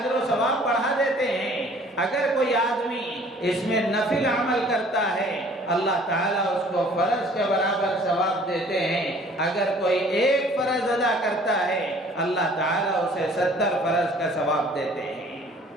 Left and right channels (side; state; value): both; normal; correlation 0.53